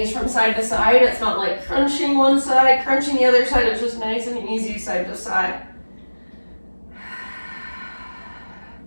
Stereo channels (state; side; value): inverted; both; correlation -1.00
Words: from side to side, it's not like crunching one side, crunching the other side. It's just nice and easy side to side.